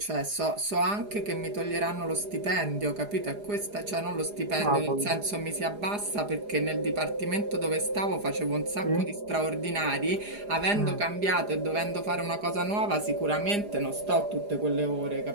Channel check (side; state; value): left; late; 4.9 ms